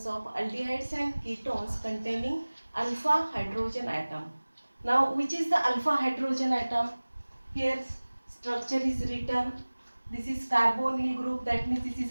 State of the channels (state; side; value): inverted; both; correlation -1.00